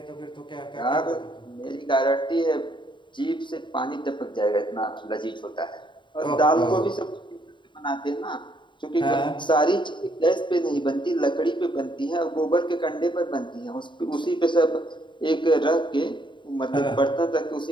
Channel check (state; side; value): late; right; 0.23 ms